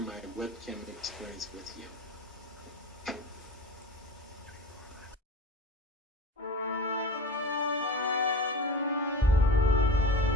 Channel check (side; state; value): both; normal; correlation 0.33